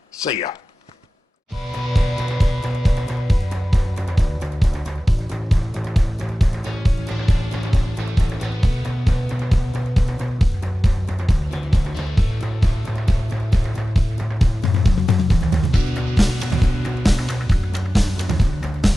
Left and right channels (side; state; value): both; normal; correlation 0.96